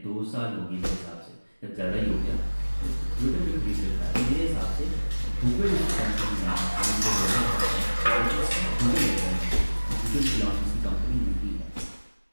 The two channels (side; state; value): both; inverted; correlation -1.00